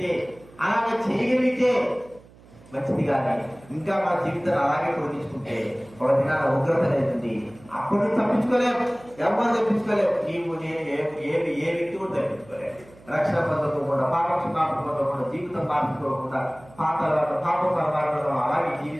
అలాగే చేయగలిగితే మంచిది. కానీ ఇంకా మన జీవితాన్ని అలాగే పొడిగించుకుంటే ఒక దినాల ఉగ్రత అనేది అప్పుడు తప్పించుకోలేము, ఎవరు తప్పించుకోలేము. నీవు నేను ఏ వ్యక్తి కూడా తప్పించుకోలేము. రక్షణ పొందకుండా, పాప క్షమాపణ పొందకుండా, జీవితం మార్చుకోకుండా పాప పరమాత్మలో అలాగే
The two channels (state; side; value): noise; right; hum, 24 dB below the sound